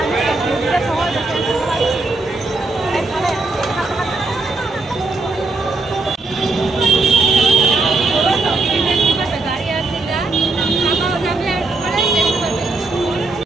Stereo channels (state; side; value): quieter; left; 3.4 dB